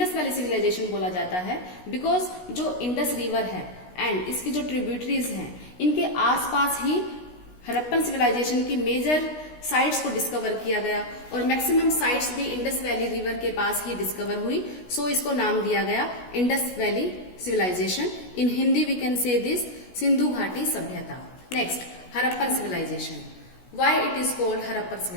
वैली सिविलाइजेशन बोला जाता है बिकॉज जो इंडस रिवर है एंड इसकी जो ट्रिब्यूटरीज हैं इनके आसपास ही हरप्पन सिविलाइजेशन की मेजर साइट्स को डिस्कवर किया गया और मैक्सिमम साइट्स भी इंडस वैली रिवर के पास ही डिस्कवर हुई. सो इसको नाम दिया गया Indus valley civilisation. In Hindi we can say this Sindhu घाटी सभ्यता. Next, Harappan civilisation. Why it is called Harappan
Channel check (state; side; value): late; right; 16 ms